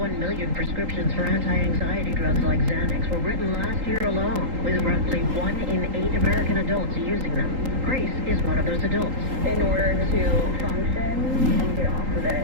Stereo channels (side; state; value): left; late; 3.8 ms